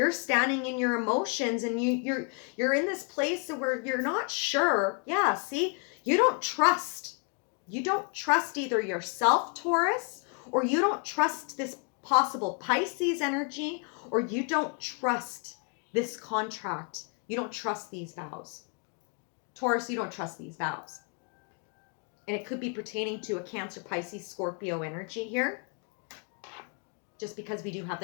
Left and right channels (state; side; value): quieter; right; 38.9 dB